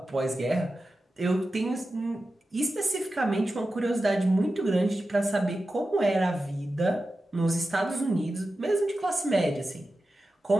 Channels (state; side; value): normal; both; correlation 0.93